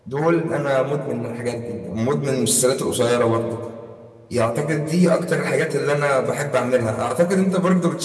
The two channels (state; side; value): identical; both; correlation 1.00